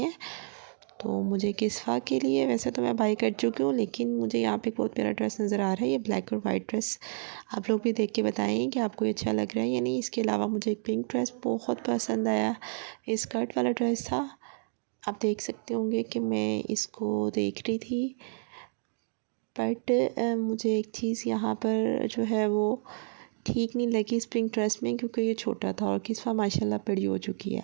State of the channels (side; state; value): left; silent; 55 dB below the other